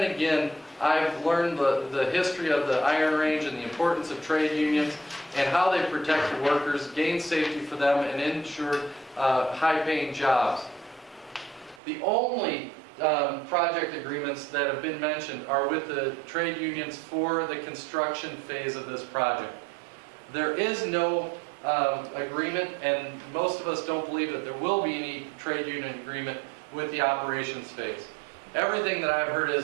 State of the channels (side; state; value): left; drops out; at 11.8 s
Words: again, I've learned the history of the Iron Range and the importance of trade unions and how they protect the workers, gain safety for them, and ensure high-paying jobs. The only project agreements that have been mentioned are with the trade unions for the construction phase of this project. There is no agreement, and most of us don't believe that there will be any trade union agreement with the operations phase. Everything that I've heard